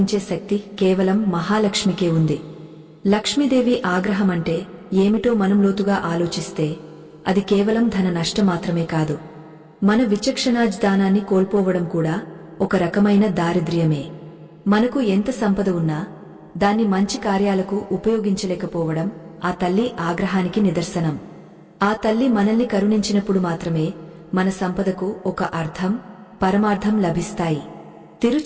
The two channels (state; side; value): identical; both; correlation 1.00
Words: శక్తి కేవలం మహాలక్ష్మికే ఉంది. లక్ష్మీదేవి ఆగ్రహమంటే ఏమిటో మనం లోతుగా ఆలోచిస్తే అది కేవలం ధన నష్టం మాత్రమే కాదు, మన విచక్షణాజ్ఞానాన్ని కోల్పోవడం కూడా ఒక రకమైన దారిద్ర్యమే. మనకు ఎంత సంపద ఉన్నా దాన్ని మంచి కార్యాలకు ఉపయోగించలేకపోవడం ఆ తల్లి ఆగ్రహానికి నిదర్శనం. ఆ తల్లి మనల్ని కరుణించినప్పుడు మాత్రమే మన సంపదకు ఒక అర్థం, పరమార్థం లభిస్తాయి.